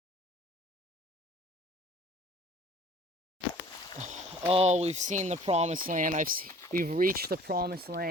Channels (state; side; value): normal; both; correlation 0.50